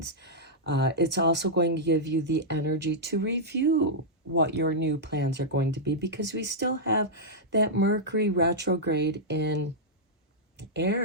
It's also going to give you the energy to review what your new plans are going to be, because we still have that Mercury retrograde in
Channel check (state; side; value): normal; both; correlation -0.08